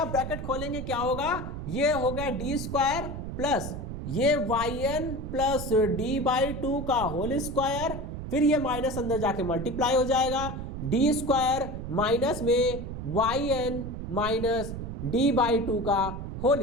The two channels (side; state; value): right; noise; rumble, 7 dB below the sound